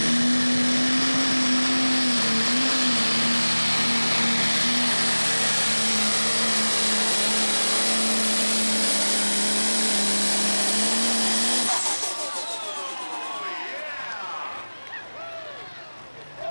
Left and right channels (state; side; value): inverted; both; correlation -1.00